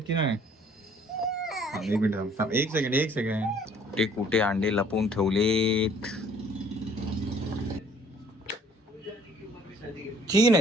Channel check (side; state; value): both; normal; correlation 0.57